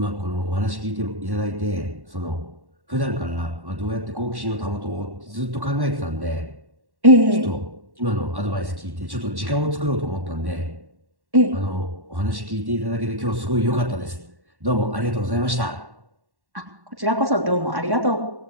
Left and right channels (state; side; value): late; left; 1.1 ms